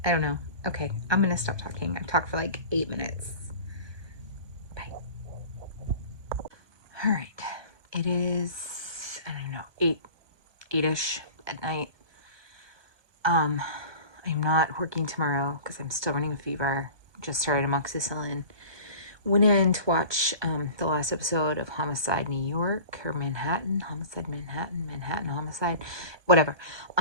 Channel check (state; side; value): late; left; 1.2 ms